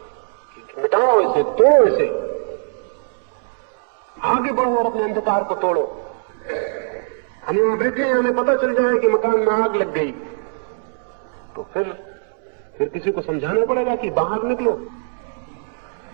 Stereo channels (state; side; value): silent; left; 65 dB below the other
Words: मिटाओ इसे, तोड़ो इसे, आगे बढ़ो और अपने अंधकार को तोड़ो। हम यहां बैठे हैं, हमें पता चल जाए कि मकान में आग लग गई, तो फिर किसी को समझाना पड़ेगा कि बाहर निकलो,